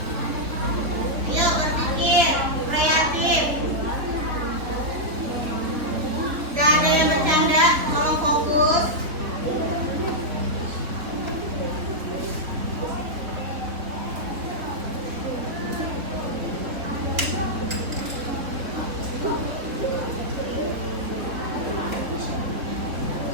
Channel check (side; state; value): left; late; 3.8 ms